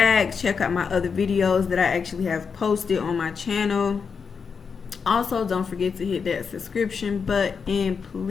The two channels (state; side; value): quieter; right; 5.8 dB